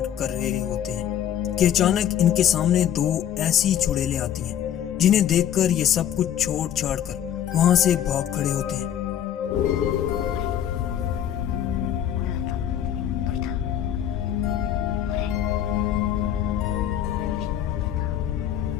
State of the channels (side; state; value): right; quieter; 10.3 dB